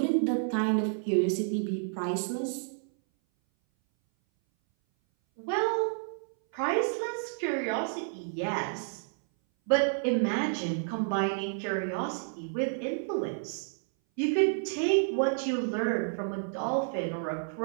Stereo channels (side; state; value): left; silent; 58 dB below the other